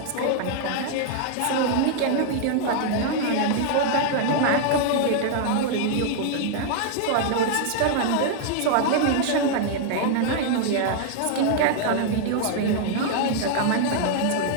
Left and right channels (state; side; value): different; both; correlation 0.00